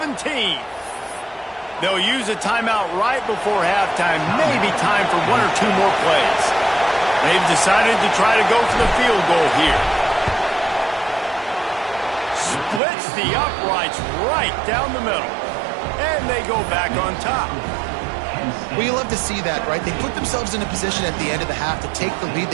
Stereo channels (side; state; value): left; drops out; at 12.8 s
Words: They'll use a timeout right before halftime. Maybe time for 1 or 2 more plays. They've decided to try to go for the field goal here. Splits the uprights right down the middle. And they go back on top. Well, you love to see that, right? They put themselves in a position at the end of the half to take the lead.